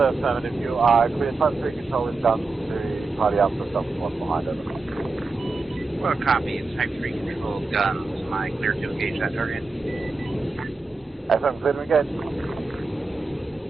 affirmative. You are clear type 3 control with guns to party up the stuff one behind it. What are copies? Type 3 controlled guns. Am I clear to engage that target? FM, clear to engage.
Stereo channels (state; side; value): quieter; left; 3.6 dB